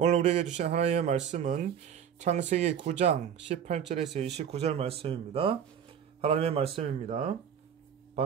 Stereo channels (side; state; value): left; quieter; 8.4 dB